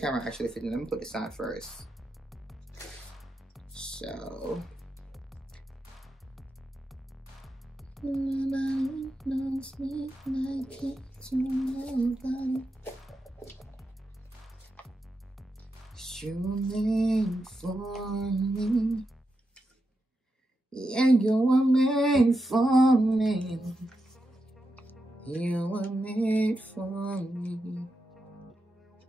actually fits in. Let me put this on first. So nobody knows me like it to nobody. You made for me. Yeah, you were made for me. You were made for me.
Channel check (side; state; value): both; normal; correlation 0.87